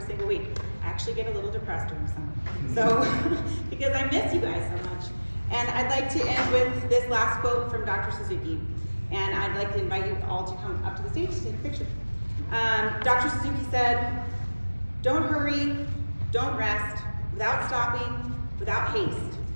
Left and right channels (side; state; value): both; inverted; correlation -1.00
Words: single week. I actually get a little depressed during summer. So, because I miss you guys so much. And I'd like to end with this last quote from Dr. Suzuki. And I'd like to invite you all to come up to the stage to take a picture. Dr. Suzuki said, "Don't hurry, don't rest, without stopping, without haste.